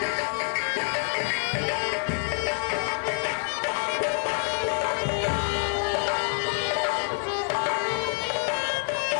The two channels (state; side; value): silent; right; digital silence